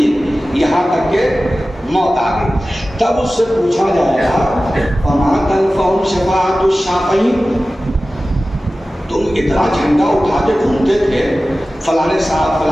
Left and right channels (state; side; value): normal; both; correlation 0.96